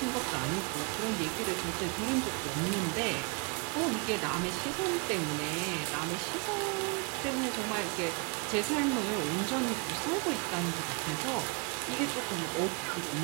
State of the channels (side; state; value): left; quieter; 33.6 dB